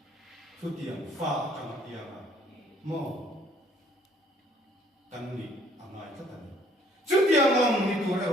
tu tiang fa kang tiang mo kan ni angai ta tan chu tiang ang ni tu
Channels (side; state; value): both; normal; correlation 0.60